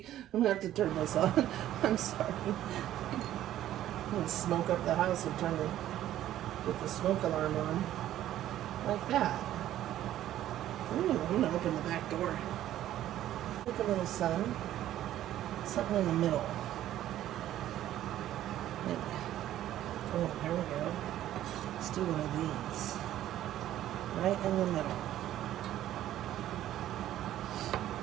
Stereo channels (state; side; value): quieter; left; 12.7 dB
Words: I'm gonna have to turn this on. I'm sorry. I'm gonna smoke up the house and get the smoke alarm on. Like that. Ooh, I'm gonna open the back door. Look, a little sun. Something in the middle. Maybe. Oh, here we go. Let's do one of these. Right in the middle.